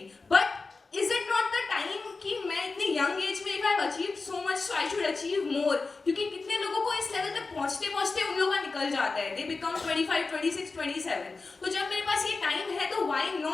but is it not the time कि मैं इतनी young age में if I have achieved so much, so I should achieve more? क्योंकि कितने लोगों को इस लेवल तक पहुँचते पहुँचते उन लोगों का निकल जाता है, they become 25, 26, 27. तो जब मेरे पास ये टाइम है तो why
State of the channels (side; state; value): right; quieter; 4.0 dB